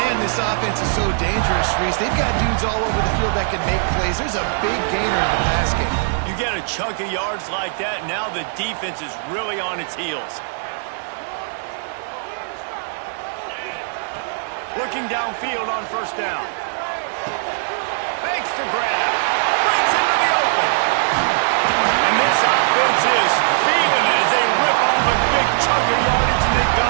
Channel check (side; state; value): left; silent; digital silence